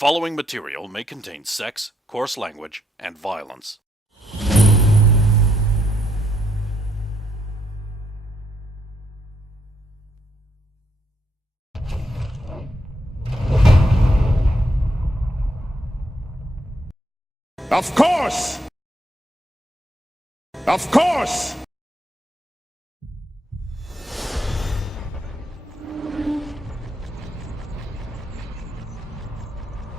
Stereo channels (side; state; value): both; normal; correlation 0.76